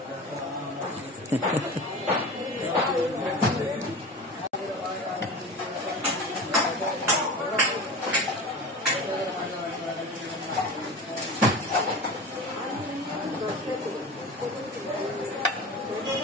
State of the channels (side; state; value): both; normal; correlation 0.32